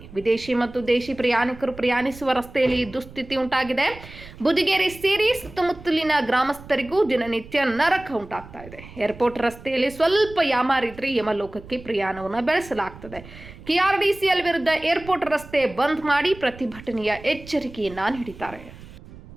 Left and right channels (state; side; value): noise; right; rumble, 18 dB below the sound